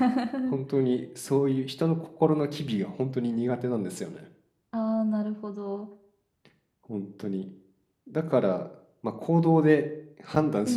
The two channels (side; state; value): both; identical; correlation 1.00